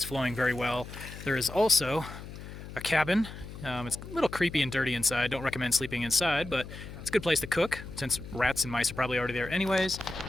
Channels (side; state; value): left; noise; hum, 12 dB below the sound